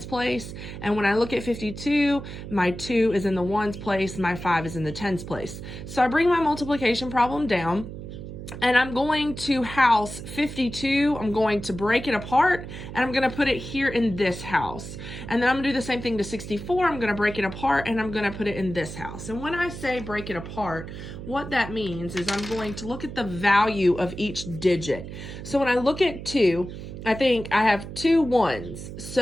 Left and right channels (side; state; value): right; noise; hum, 10 dB below the sound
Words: place. And when I look at 52, my 2 is in the ones place, my 5 is in the tens place. So I bring my multiplication problem down, and I'm going to house 52. I'm going to break it apart, and I'm going to put it here in this house. And then I'm going to do the same thing to 64. I'm going to break it apart, and I'm going to put it in this house. And when I say break it apart, what that means is I'm going to look at the value of each digit. So when I look at 2, I think I have 2 ones.